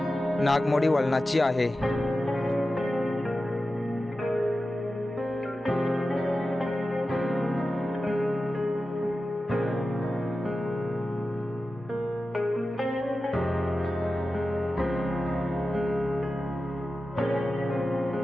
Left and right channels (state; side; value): normal; both; correlation 0.93